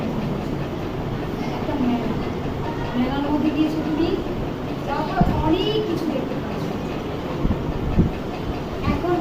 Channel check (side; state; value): both; identical; correlation 1.00